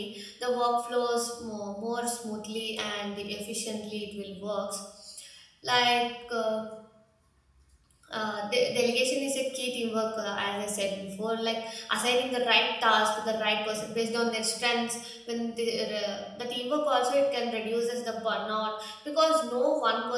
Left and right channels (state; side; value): identical; both; correlation 1.00